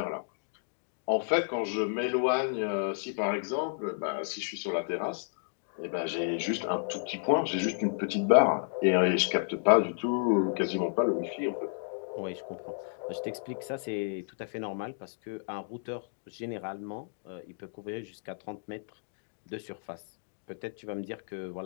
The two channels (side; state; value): right; silent; digital silence